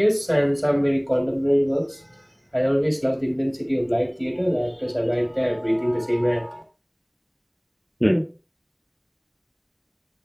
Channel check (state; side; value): identical; both; correlation 1.00